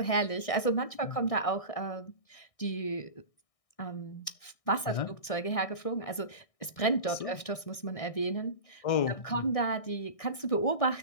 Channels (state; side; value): late; right; 1.6 ms